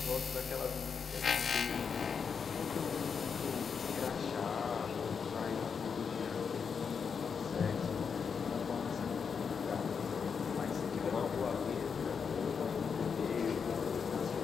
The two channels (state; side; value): quieter; right; 6.2 dB